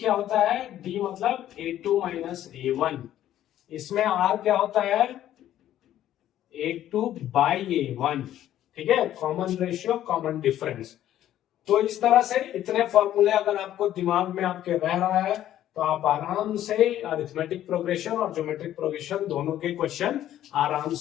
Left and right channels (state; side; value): quieter; right; 12.2 dB